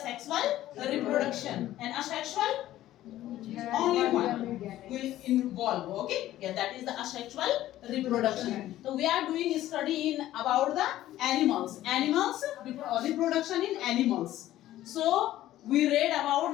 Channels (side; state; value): right; quieter; 14.1 dB